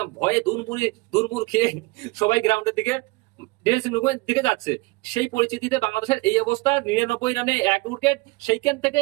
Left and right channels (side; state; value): left; quieter; 24.5 dB